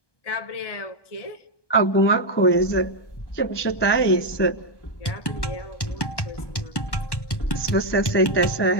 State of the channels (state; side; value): late; right; 1.1 ms